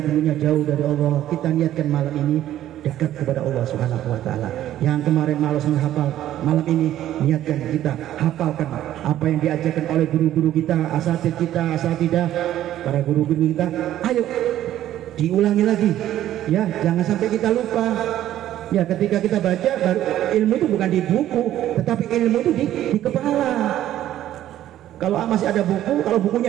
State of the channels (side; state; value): left; quieter; 12.6 dB